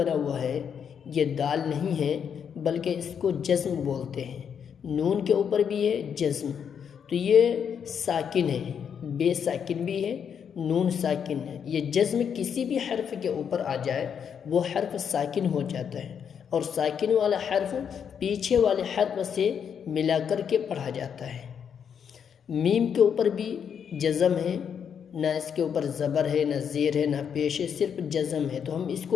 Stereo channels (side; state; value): right; quieter; 7.6 dB